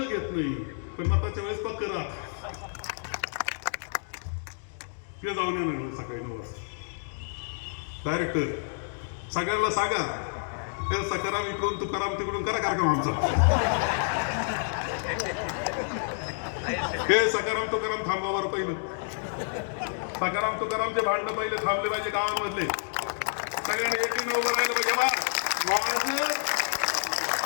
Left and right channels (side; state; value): right; silent; digital silence